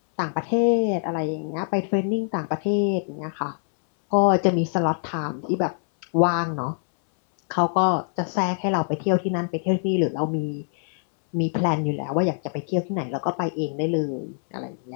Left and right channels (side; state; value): right; silent; 62 dB below the other